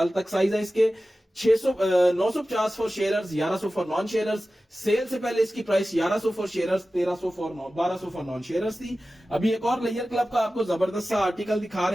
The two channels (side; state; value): both; normal; correlation 0.95